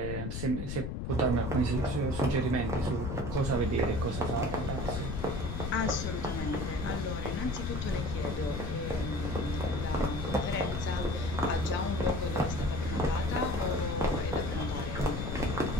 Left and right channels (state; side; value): noise; left; rumble, 4 dB below the sound